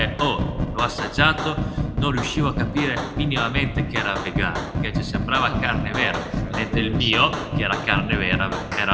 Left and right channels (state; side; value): identical; both; correlation 1.00